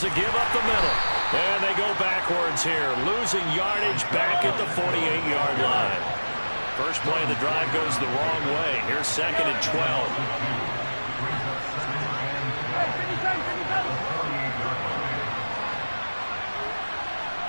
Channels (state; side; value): inverted; both; correlation -1.00